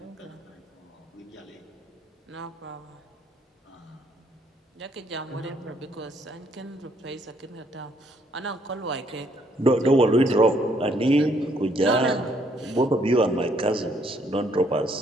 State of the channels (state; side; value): normal; both; correlation 0.68